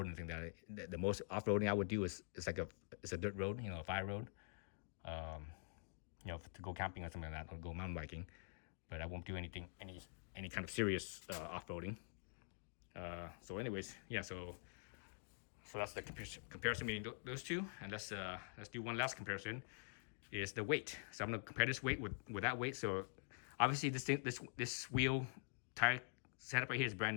and things like that. The most off roading I would do is a dirt road, a fire road, to go camping or something like that, or go mountain biking. But I won't do any kind of serious off roading. So anyways, yeah. So that's the comparison between those two, and let's do one last comparison. Is the weight. So I'm gonna compare this weight with that weight. So obviously this wheel tire setup right here is brand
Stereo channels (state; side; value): silent; right; digital silence